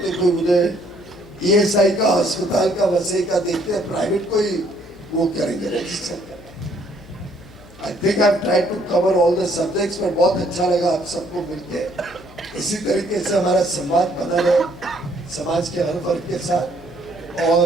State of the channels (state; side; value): noise; left; hum, 22 dB below the sound